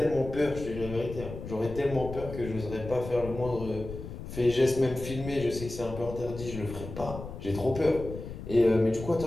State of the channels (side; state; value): left; noise; rumble, 10 dB below the sound